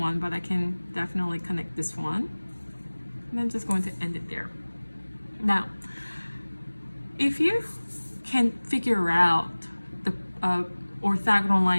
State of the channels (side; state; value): both; inverted; correlation -1.00